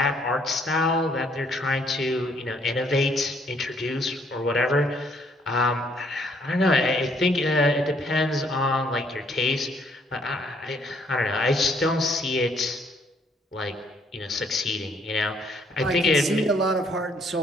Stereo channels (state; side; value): normal; both; correlation 0.66